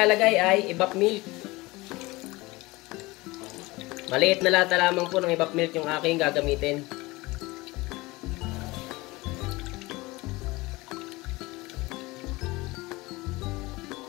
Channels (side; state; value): right; quieter; 21.8 dB